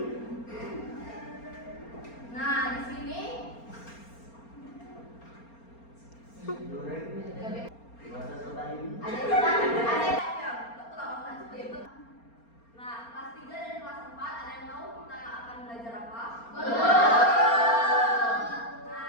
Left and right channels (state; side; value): late; right; 4.3 ms